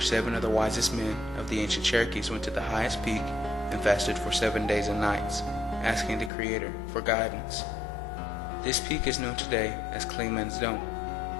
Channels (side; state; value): right; drops out; at 6.3 s